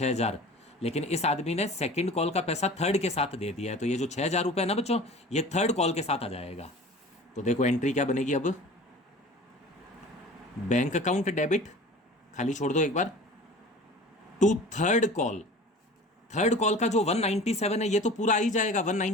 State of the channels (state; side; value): normal; both; correlation 0.41